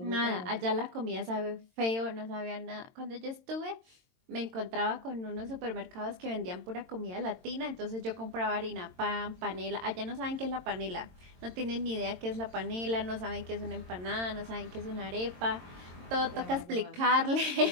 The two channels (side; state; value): left; late; 22 ms